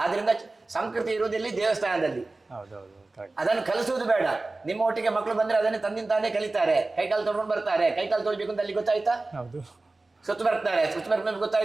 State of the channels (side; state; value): left; quieter; 3.2 dB